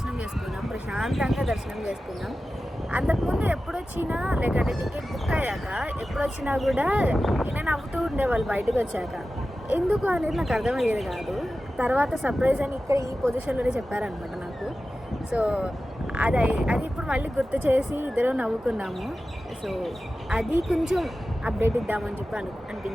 చేసుకున్నాం, ప్రశాంతంగా దర్శనం చేసుకున్నాం. అంతకుముందు ఎప్పుడొచ్చినా లేకంటే టికెట్ బుక్ అయ్యాక ఎప్పుడొచ్చినా కూడా ఈయన నవ్వుతూ ఉండేవాళ్ళు బయటకు వచ్చాక. ఎందుకు అనేది నాకు అర్థమయ్యేది కాదు. తర్వాత సర్ప్రైజ్ అని ఇక్కడ ఈ పొజిషన్లోనే చెప్పారనమాట నాకు. సో అది అది ఇప్పుడు మళ్ళీ గుర్తు చేసి ఇద్దరు నవ్వుకున్నాము. సో అది కొంచెం అప్డేట్ ఇద్దామని చెప్పి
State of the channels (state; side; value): normal; both; correlation 0.94